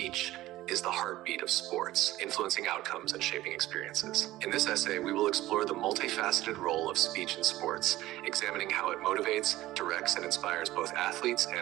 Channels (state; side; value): quieter; left; 16.3 dB